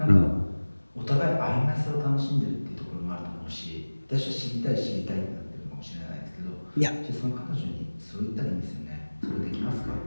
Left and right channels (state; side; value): inverted; both; correlation -1.00